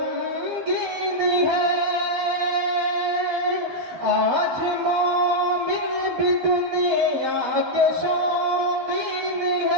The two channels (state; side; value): late; left; 12 ms